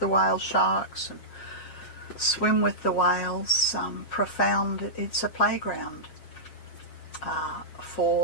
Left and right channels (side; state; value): right; late; 7.4 ms